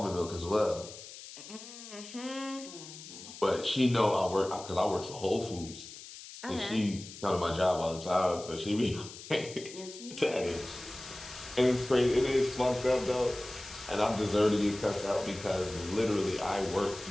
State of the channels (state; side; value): noise; left; hiss, 14 dB below the sound